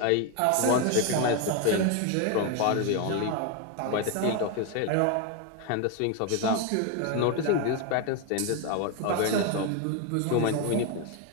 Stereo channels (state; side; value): different; both; correlation 0.01